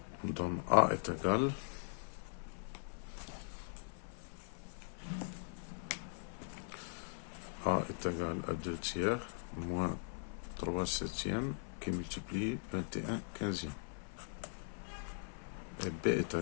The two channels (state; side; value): silent; right; 51 dB below the other